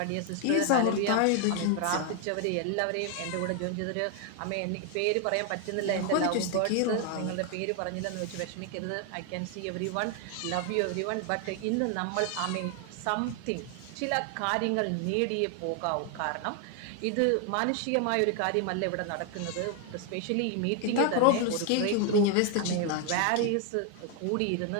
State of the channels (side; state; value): both; different; correlation 0.01